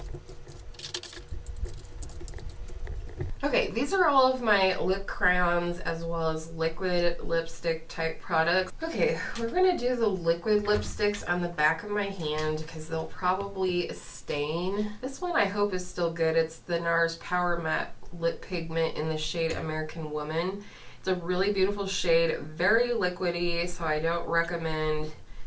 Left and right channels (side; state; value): both; identical; correlation 1.00